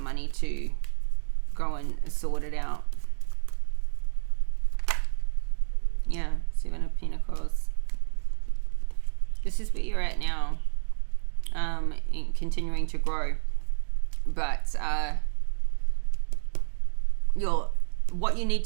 to go and sort it out. Yeah, Seven of Pentacles. This is where you're at now, in continuing to grow. But what you need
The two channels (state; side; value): silent; left; digital silence